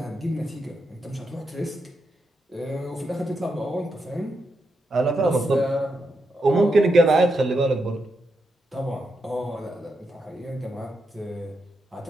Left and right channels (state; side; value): normal; both; correlation 0.84